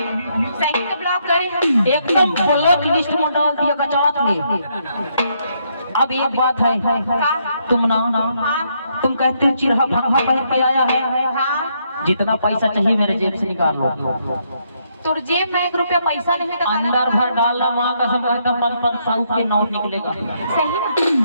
तो ब्लॉक करे एकदम ब्लॉक लिस्ट में डाल दिया गचात ले। अब एक बात है, तुम तुम कहते हो चिरहा भंगा पहन के आया है। जितना पैसा चाहिए मेरे जेब से निकाल लो। तुर जेब में 1 रुपया पैसा नहीं तो अंदर भर डालना। माँ कसम 500 के नोट निकलेगा। सही ना?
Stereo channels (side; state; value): both; inverted; correlation -0.75